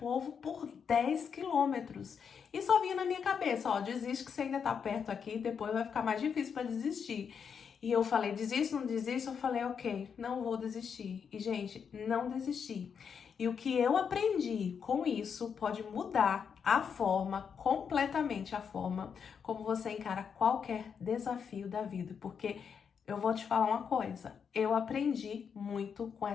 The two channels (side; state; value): right; quieter; 6.8 dB